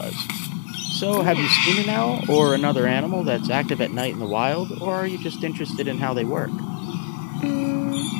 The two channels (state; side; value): silent; right; digital silence